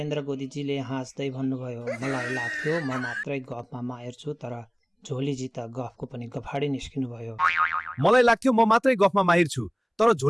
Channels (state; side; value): identical; both; correlation 1.00